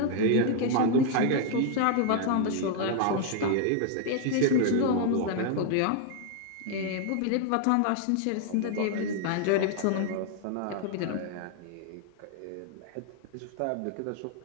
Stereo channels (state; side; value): different; both; correlation 0.00